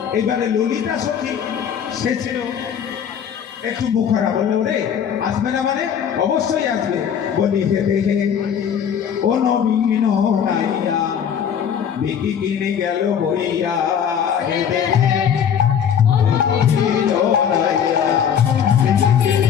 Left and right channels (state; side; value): quieter; right; 8.2 dB